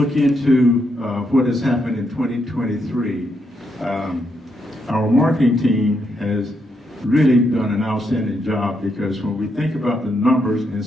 into what has happened in 2023, our marketing team has really done an outstanding job because when we think about the numbers and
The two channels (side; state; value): both; normal; correlation 0.79